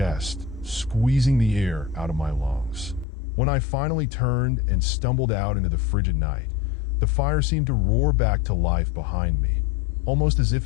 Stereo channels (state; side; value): drops out; right; at 3.1 s